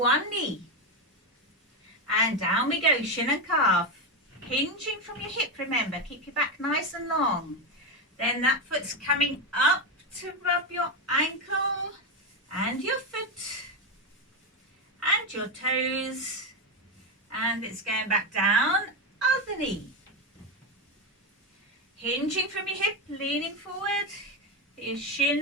knee. And down we go, shin and calf. Hinging from your hip, remember, keep your back nice and long. Then that foot's coming up to rub your ankle and your foot and your toes, and it's going back down, other knee. Hinging from your hip, leaning forward, your shin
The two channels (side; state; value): both; normal; correlation 0.11